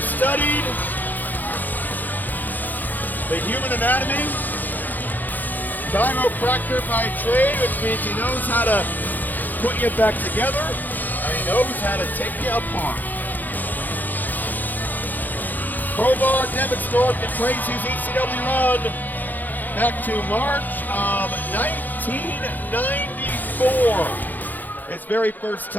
studied the human anatomy, chiropractor by trade, which means he knows how to put you back together, and he knows how to take you apart. Crowbar, Devin Stork, and Tracy's ECW run back to March of 1994. His very first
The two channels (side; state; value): right; late; 0.085 ms